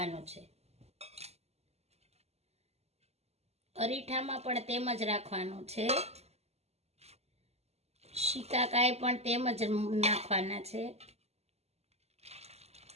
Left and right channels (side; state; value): left; late; 0.30 ms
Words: છે. અરીઠામાં પણ તેમ જ રાખવાનું છે. શિકાકાઈ પણ તેમ જ નાખવાના છે.